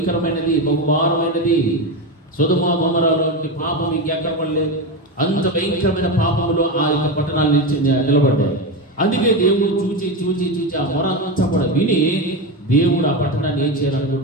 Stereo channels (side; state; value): both; normal; correlation 0.16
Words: బహుభారమైనది. సొదొమ గొమొర్రా వంటి పాపం ఇంకెక్కడ పడలేదు. అంత భయంకరమైన పాపంలో ఆ యొక్క పట్టణాలు నిలబడ్డాయి. అందుకే దేవుడు చూచి చూచి చూచి ఆ మొర అంతా కూడా విని దేవుడు ఆ పట్టణాన్ని ఏం